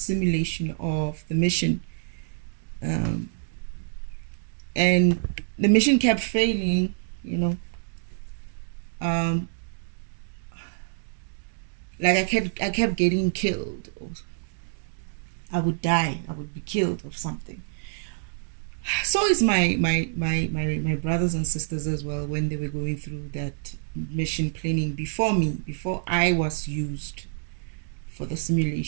of the mission, and the mission kept failing, like I kept getting killed, or I would die, I would be killed of something. So is my brothers and sisters as well, when they were going through that mission planning before me, before I was used for the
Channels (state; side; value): silent; left; digital silence